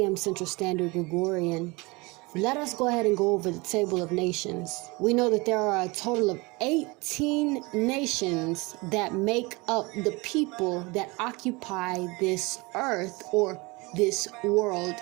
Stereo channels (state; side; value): quieter; left; 25.2 dB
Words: Central Standard Gregorian. Let us go ahead and go over the table of nations. We know that there are a total of 18 nations that make up the people that occupy this earth or this world